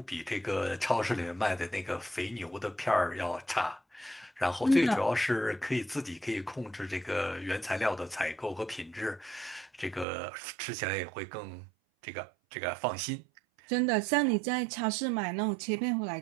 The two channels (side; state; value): left; drops out; at 10.1 s